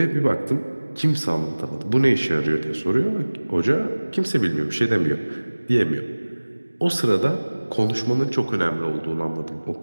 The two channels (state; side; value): inverted; both; correlation -1.00